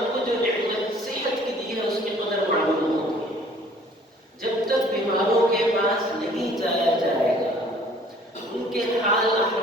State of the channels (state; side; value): normal; both; correlation 0.55